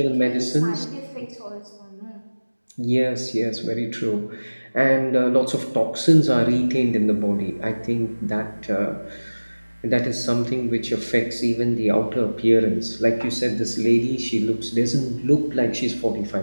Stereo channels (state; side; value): inverted; both; correlation -1.00